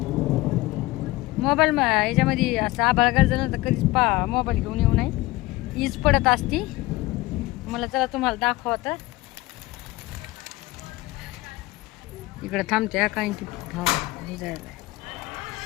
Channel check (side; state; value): right; quieter; 19.6 dB